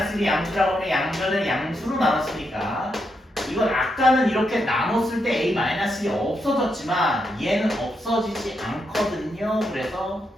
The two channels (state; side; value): normal; both; correlation 0.82